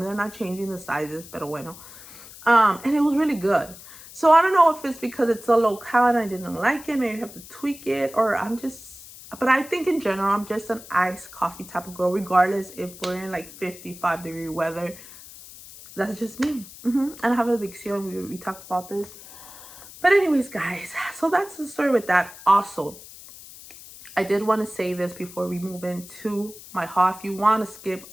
they're not changing the sizes, pero bueno. And it was really good. So I don't know if it's because it's a low-cal and I didn't like it. Maybe I have to tweak it, or I'm just, but I think in general, I'm just an iced coffee type of girl, regardless if we're in like 55-degree weather. That's just me. And I have addiction. We talked about this. But anyways, guys, so that's the story with that. Also, I did want to say this before we move into my haul. If you want to skip,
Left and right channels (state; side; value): noise; left; hiss, 17 dB below the sound